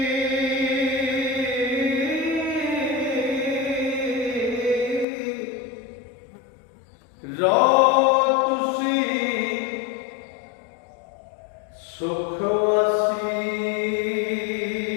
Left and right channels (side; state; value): right; drops out; at 5.1 s